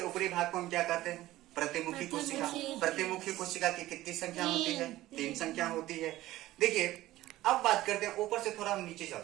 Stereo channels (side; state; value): left; quieter; 16.0 dB